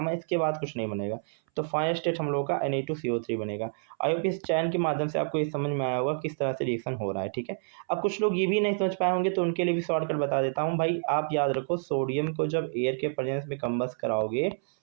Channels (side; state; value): left; silent; 59 dB below the other